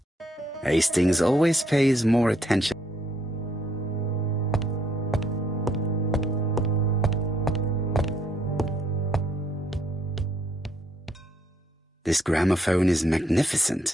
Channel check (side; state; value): both; normal; correlation 0.70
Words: Hastings always pays more attention. This gramophone is